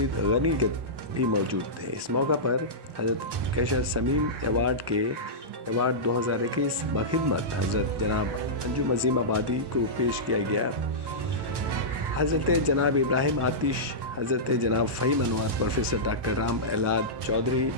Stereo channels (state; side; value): late; left; 1.1 ms